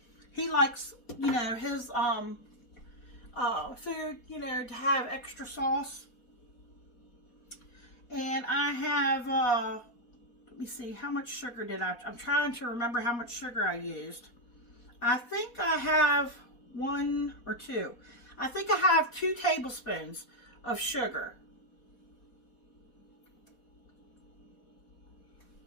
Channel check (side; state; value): right; late; 4.2 ms